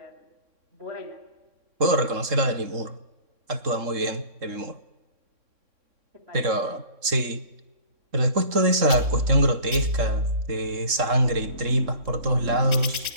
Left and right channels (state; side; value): late; left; 3.7 ms